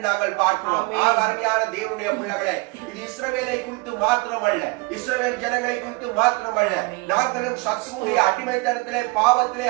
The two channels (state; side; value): quieter; left; 25.5 dB